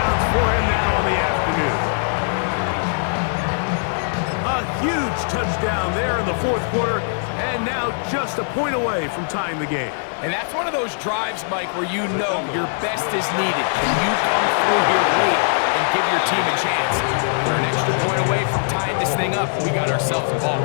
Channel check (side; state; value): right; silent; digital silence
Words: for him now in the afternoon. A huge touchdown there in the fourth quarter, and now just a point away from tying the game. And that's one of those drives, Mike, where you know your best is needed. Can you come through here late and give your team a chance? They're an extra point away from tying this thing up, and we got ourselves a ball